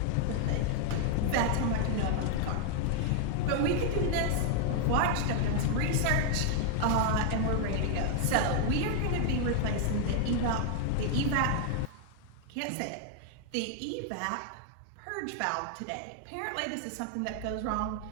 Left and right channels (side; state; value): both; different; correlation 0.00